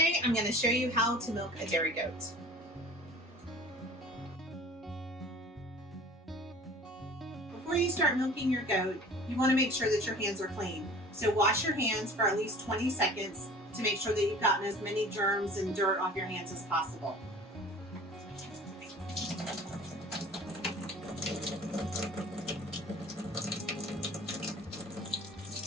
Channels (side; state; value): both; normal; correlation 0.45